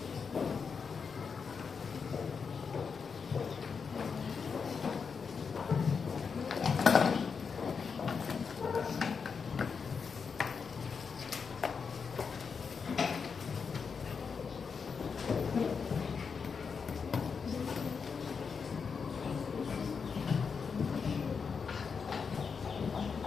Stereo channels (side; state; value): right; quieter; 5.8 dB